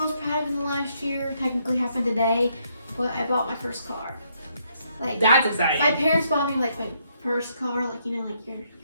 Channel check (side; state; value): both; inverted; correlation -0.73